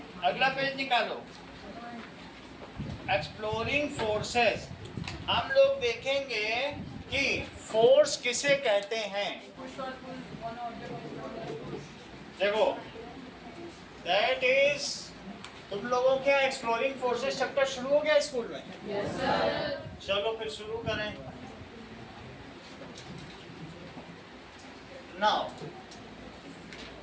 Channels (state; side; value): identical; both; correlation 1.00